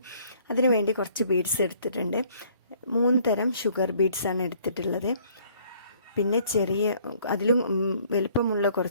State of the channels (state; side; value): inverted; both; correlation -0.60